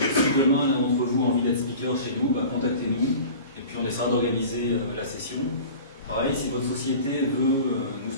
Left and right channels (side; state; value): both; inverted; correlation -0.39